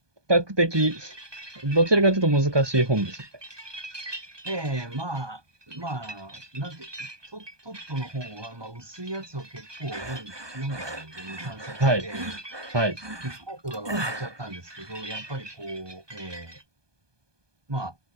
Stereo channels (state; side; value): late; left; 1.2 ms